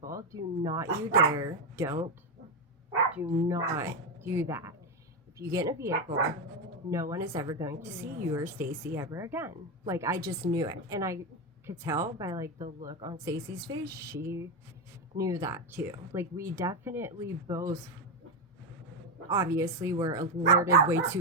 Do not you dare. Do not do that. If you get in a vehicle, no one is ever going to see you or Stacy ever again. Like, I just knew it. And I could tell by like the look on Stacy's face, she knew that too. Like we definitely both obviously were alerted way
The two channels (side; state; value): both; normal; correlation 0.09